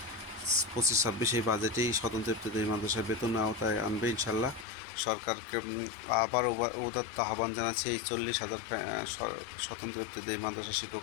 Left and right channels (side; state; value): right; drops out; at 4.7 s